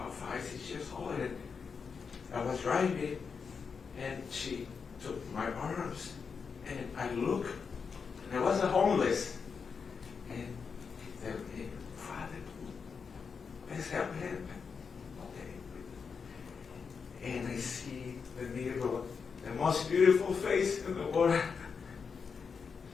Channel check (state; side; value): quieter; right; 5.7 dB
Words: 6 years old, and I was driving, and she took my arms, and I looked, and I was a homeless, and they said, hey, Father, let's help him. Okay. And I see the mirror, the most beautiful face in the world,